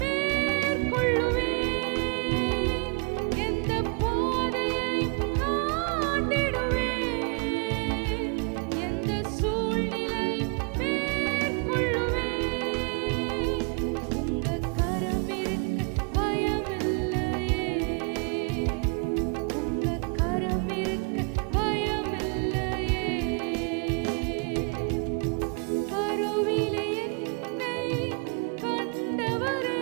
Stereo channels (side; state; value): left; quieter; 35.4 dB